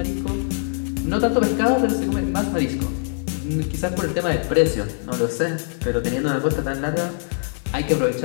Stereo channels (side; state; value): right; silent; digital silence